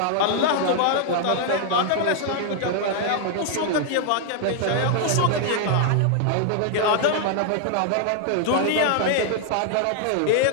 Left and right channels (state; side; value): different; both; correlation -0.01